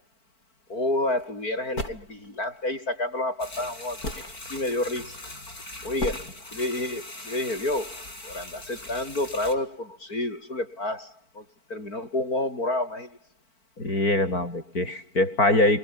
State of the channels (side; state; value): right; late; 4.5 ms